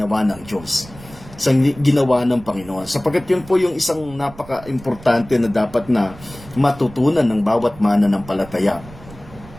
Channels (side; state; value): right; noise; rumble, 19 dB below the sound